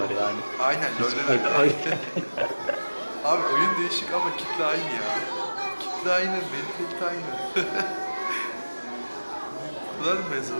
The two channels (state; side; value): inverted; both; correlation -1.00